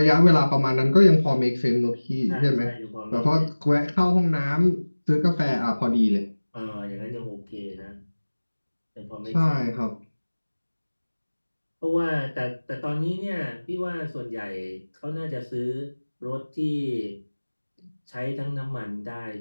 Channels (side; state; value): both; inverted; correlation -1.00